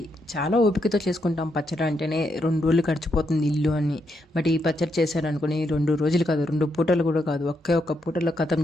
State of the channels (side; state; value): both; normal; correlation 0.80